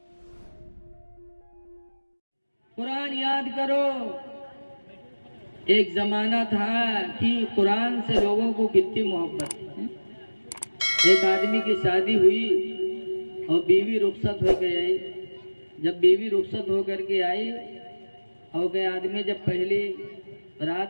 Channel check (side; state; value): both; inverted; correlation -1.00